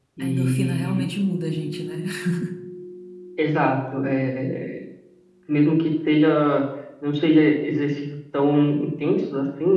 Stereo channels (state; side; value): identical; both; correlation 1.00